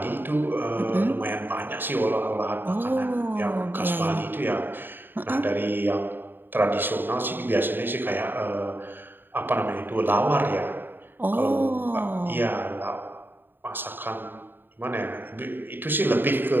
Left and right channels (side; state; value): left; late; 0.095 ms